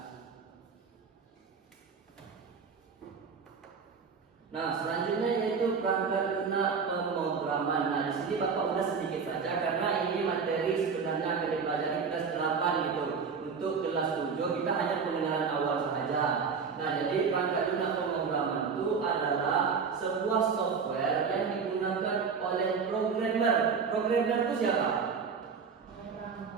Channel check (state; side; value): quieter; left; 5.7 dB